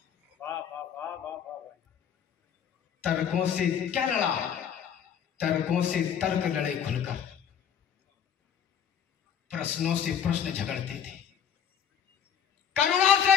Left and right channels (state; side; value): quieter; right; 8.3 dB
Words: तर्कों से क्या लड़ा, तर्कों से तर्क लड़े खुलकर, प्रश्नों से प्रश्न झगड़ते थे, करुणा से